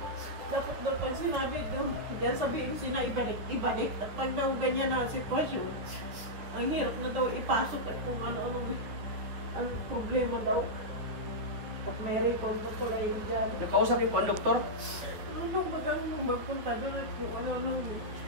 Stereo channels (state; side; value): late; left; 9.6 ms